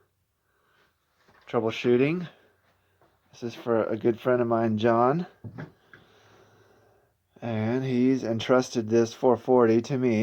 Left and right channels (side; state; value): both; identical; correlation 1.00